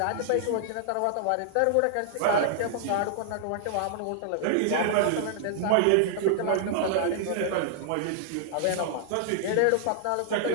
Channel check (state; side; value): different; both; correlation -0.01